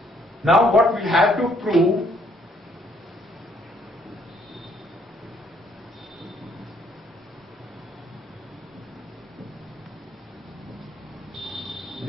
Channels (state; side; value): normal; both; correlation 0.66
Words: Now what we have to prove,